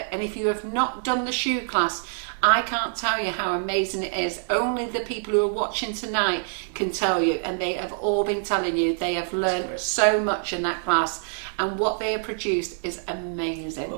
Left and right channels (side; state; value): left; silent; digital silence